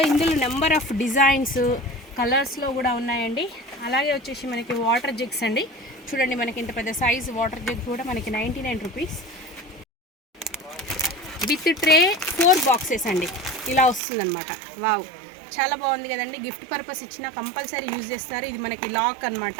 ఇందులో నెంబర్ ఆఫ్ డిజైన్స్, కలర్స్లో కూడా ఉన్నాయండి. అలాగే వచ్చేసి మనకి వాటర్ జగ్స్ అండి. చూడండి, మనకి ఇంత పెద్ద సైజ్ వాటర్ జగ్ కూడా మనకి 99 రూపీస్. విత్ ట్రే 4 బాక్సెస్ అండి, ఇలా వస్తుందన్నమాట. వావ్, చాలా బాగుంది కదండి. గిఫ్ట్ పర్పస్ ఇచ్చినా కంపల్సరీ యూజ్ చేస్తారు. ఇది మనకి లాక్ అనమాట,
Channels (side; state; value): left; drops out; at 14.0 s